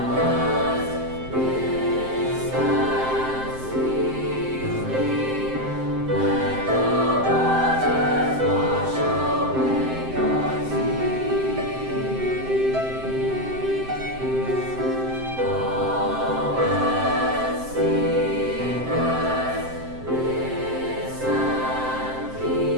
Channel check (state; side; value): late; left; 7.7 ms